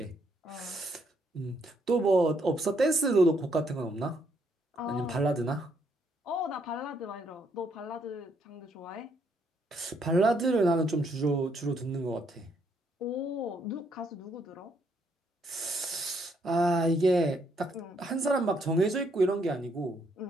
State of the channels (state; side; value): normal; both; correlation 0.72